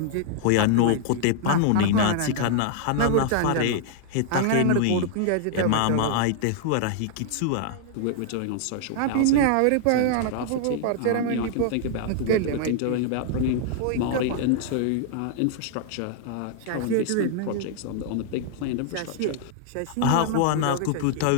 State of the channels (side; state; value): both; different; correlation -0.01